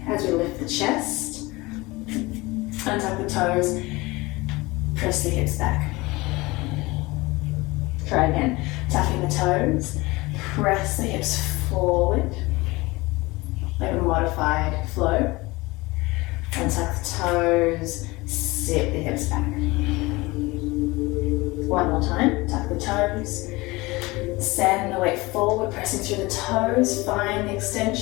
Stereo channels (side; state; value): right; quieter; 22.3 dB